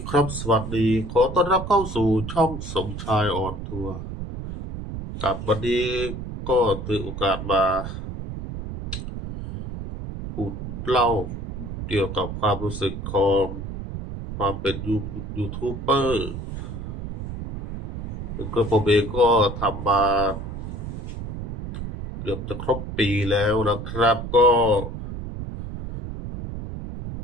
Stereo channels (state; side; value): noise; right; rumble, 7 dB below the sound